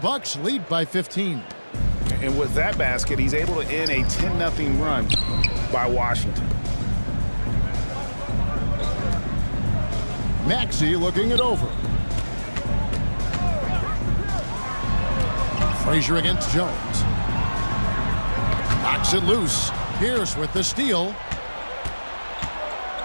lead by 15. And with that basket, he's able to end a 10-0 run by Washington. Maxey looking it over. Frazier against Jones. Knocks it loose. Pierce with the steal.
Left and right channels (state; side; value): inverted; both; correlation -1.00